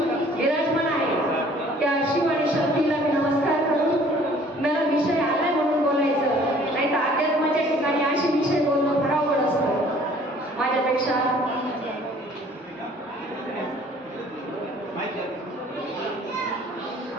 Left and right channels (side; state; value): both; normal; correlation 0.54